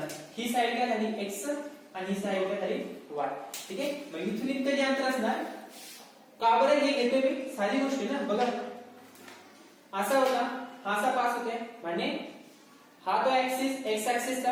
ही साइड काय झाली x आणि ही साइड काय झाली y. ठीक आहे मग इथून इतकं जे अंतर असणार का बरं हे घेतोय मी, साधी गोष्ट आहे ना बघा. असा होता हा असा पास होते म्हणजे हा तो ऍक्सिस एक्स ऍक्सिस का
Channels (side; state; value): both; identical; correlation 1.00